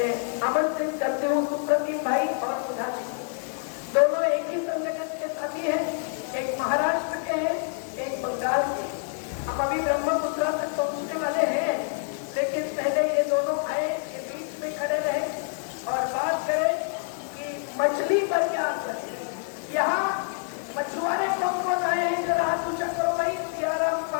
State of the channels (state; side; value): silent; right; 60 dB below the other